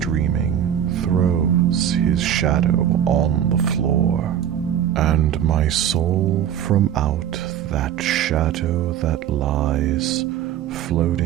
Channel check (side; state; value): left; quieter; 10.0 dB